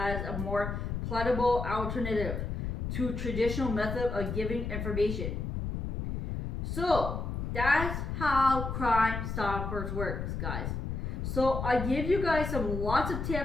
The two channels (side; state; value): left; noise; rumble, 3 dB below the sound